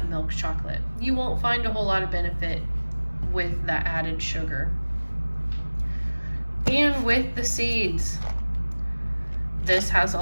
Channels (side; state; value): both; inverted; correlation -1.00